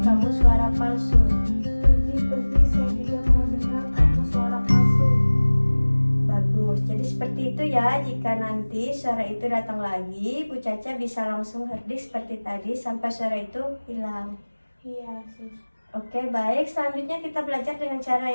kamu suara palsu. Pergi, saya tidak mau dengar kamu suara palsu. Bagus, jadi seperti itu ya. Jika nanti suara itu datang lagi, Bu Caca bisa langsung herdik seperti tadi sampai suara itu hilang. Iya, Sus. Oke, baik. Selanjutnya kita belajar dengan cara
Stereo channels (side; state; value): both; inverted; correlation -1.00